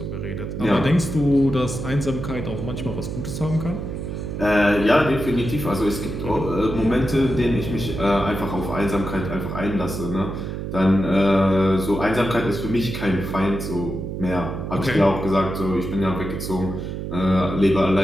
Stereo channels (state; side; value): noise; right; hum, 6 dB below the sound